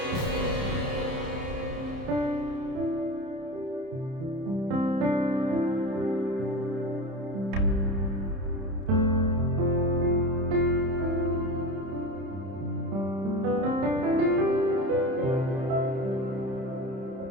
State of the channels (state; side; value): late; left; 31 ms